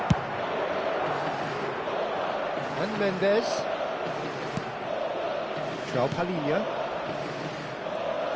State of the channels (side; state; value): both; identical; correlation 1.00